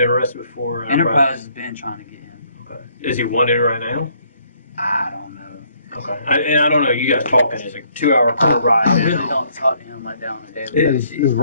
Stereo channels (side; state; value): both; inverted; correlation -0.66